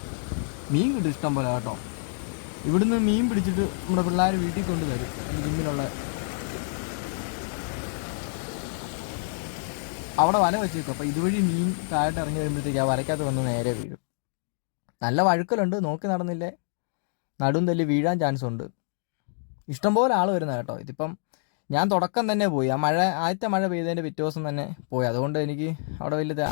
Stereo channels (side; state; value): right; silent; digital silence